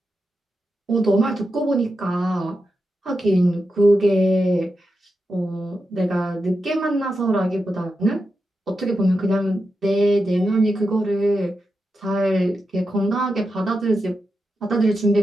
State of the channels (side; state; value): both; normal; correlation 0.88